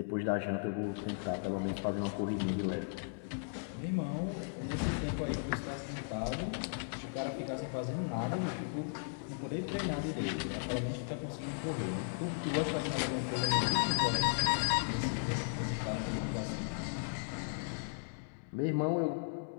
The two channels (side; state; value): right; silent; digital silence